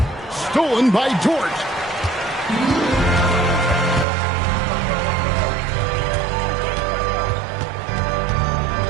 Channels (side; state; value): left; drops out; at 4.0 s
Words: Stolen by Dort.